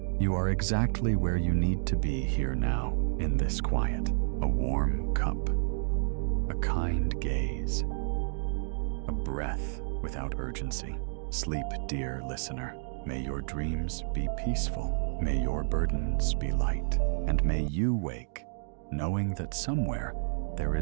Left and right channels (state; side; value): silent; left; digital silence